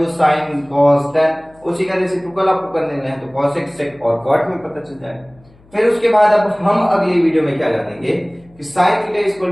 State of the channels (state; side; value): noise; left; hum, 29 dB below the sound